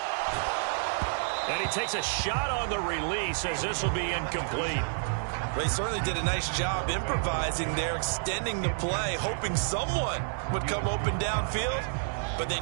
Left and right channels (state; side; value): silent; left; digital silence